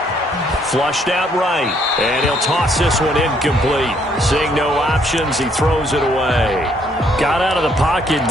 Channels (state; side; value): normal; both; correlation 0.68